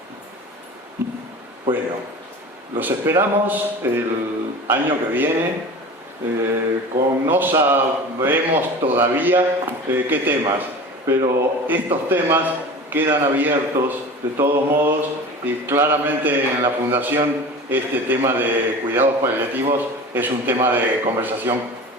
Bueno, los esperamos el año que viene. No sabemos todavía qué temas, pero estos temas quedan abiertos de todos modos, y claramente en la Fundación este tema de cuidados paliativos es un tema de conversación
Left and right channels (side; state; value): both; normal; correlation 0.36